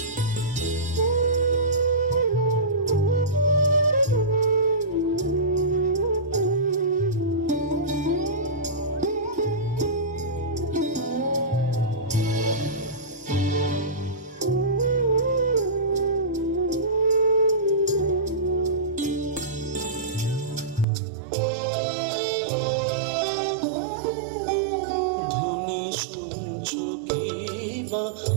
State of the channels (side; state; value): left; drops out; at 20.9 s